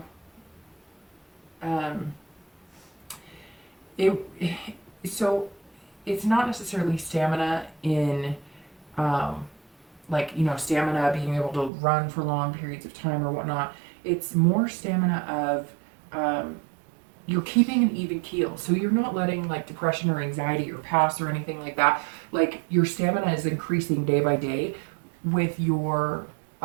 so it's not necessarily stamina in like, you know, stamina being able to run for long periods of time or whatnot. It's more stamina of you're keeping an even keel. So you're not letting like depression or anxiety or pass or anything like that. Like, your stamina is increasing day by day with your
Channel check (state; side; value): drops out; left; at 11.7 s